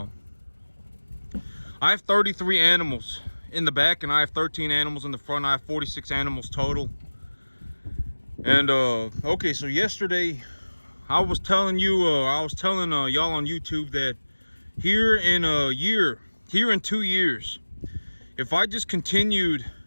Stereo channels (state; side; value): inverted; both; correlation -1.00